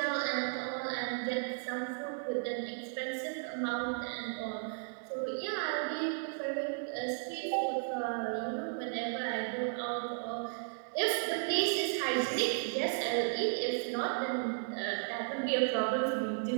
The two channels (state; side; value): silent; left; digital silence